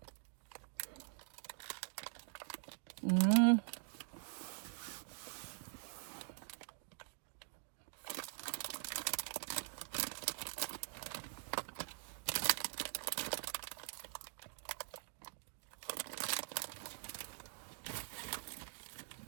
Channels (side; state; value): left; silent; digital silence